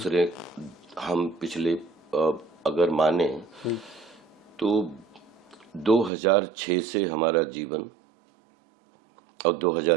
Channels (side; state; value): left; drops out; at 6.1 s